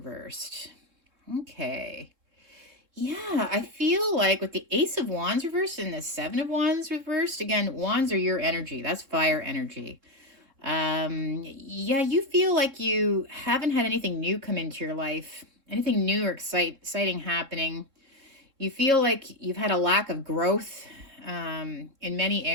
Okay. Yeah, I feel like with the Ace of Wands reversed and the Seven of Wands reversed, again, wands are your energy. That's fire energy. Yeah, you feel like you haven't had anything new come into your life, anything new or exciting happening. You feel like you've had a lack of growth in many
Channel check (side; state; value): left; late; 3.7 ms